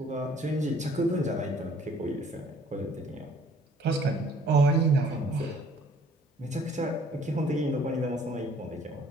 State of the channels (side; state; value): both; normal; correlation 0.57